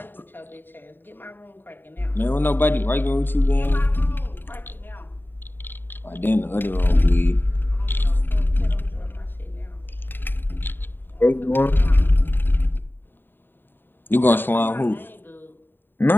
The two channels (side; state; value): right; late; 0.095 ms